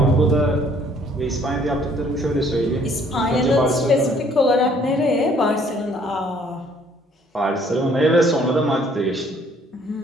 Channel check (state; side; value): normal; both; correlation 0.61